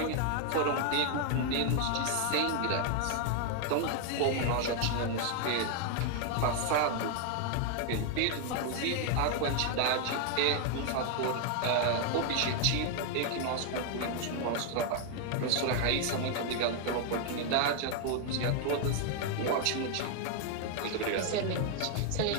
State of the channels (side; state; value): both; different; correlation 0.00